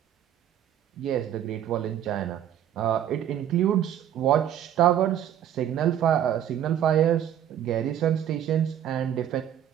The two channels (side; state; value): left; quieter; 10.5 dB